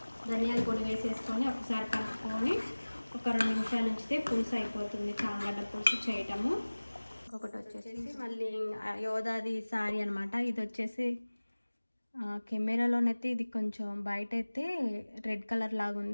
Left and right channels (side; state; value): both; inverted; correlation -1.00